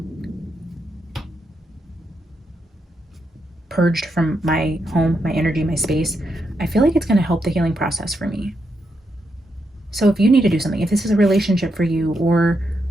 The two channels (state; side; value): normal; both; correlation 0.82